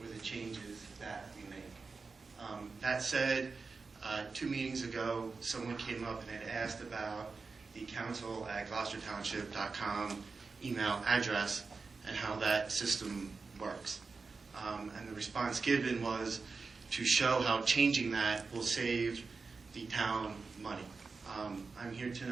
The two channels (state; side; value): quieter; left; 4.4 dB